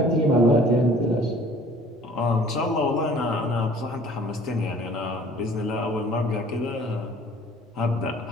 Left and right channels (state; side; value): normal; both; correlation 0.51